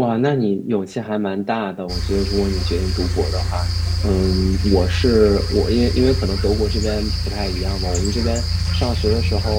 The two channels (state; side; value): identical; both; correlation 1.00